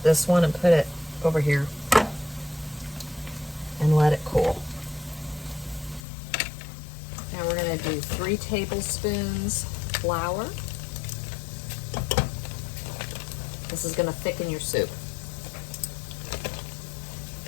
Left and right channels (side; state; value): right; drops out; at 6.0 s